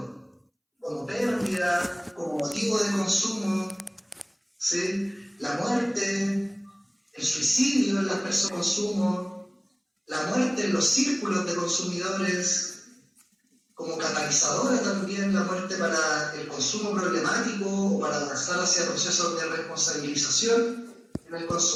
como pérdida, como motivo de consumo, ¿sí? La muerte, el suicidio en las personas de consumo, la muerte en los círculos de consumidores, como catalizadora también, la muerte para el consumo problemático o para avanzar hacia procesos de responsabilización en el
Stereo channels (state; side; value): identical; both; correlation 1.00